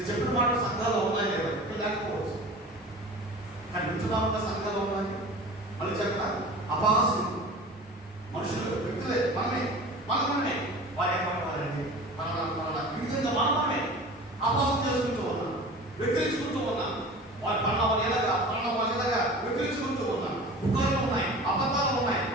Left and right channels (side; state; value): both; normal; correlation 0.38